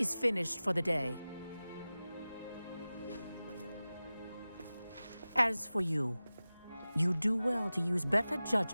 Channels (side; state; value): both; inverted; correlation -0.96